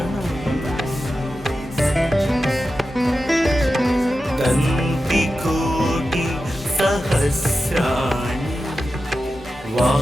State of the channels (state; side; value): normal; both; correlation 0.92